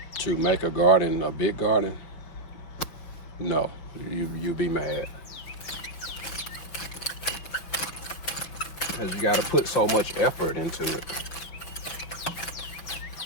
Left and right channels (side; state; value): right; late; 6.0 ms